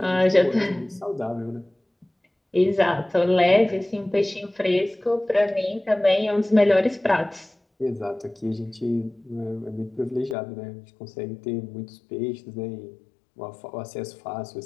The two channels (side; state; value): right; drops out; at 10.4 s